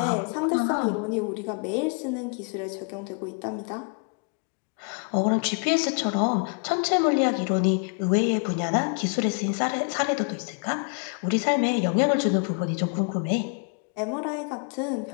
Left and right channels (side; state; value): right; quieter; 38.3 dB